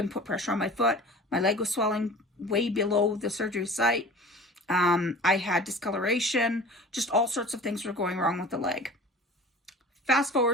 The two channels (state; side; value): normal; both; correlation 0.41